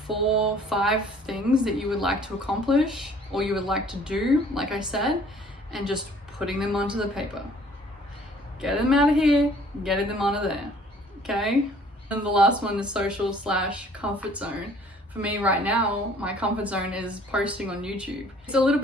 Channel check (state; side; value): normal; both; correlation 0.55